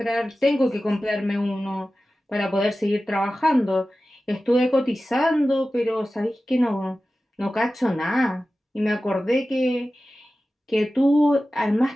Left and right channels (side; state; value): both; normal; correlation 0.95